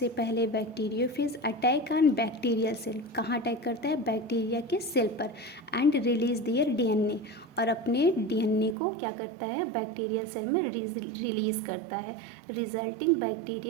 पहले bacteriophage attack on bacterial cell, कहाँ अटैक करता है, बैक्टीरिया के सेल पर, एंड रिलीज दियर डीएनए, और अपने डीएनए को क्या करता है, बैक्टीरियल सेल में रिलीज़ करता है, रिजल्टिंग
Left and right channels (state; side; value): drops out; left; at 8.8 s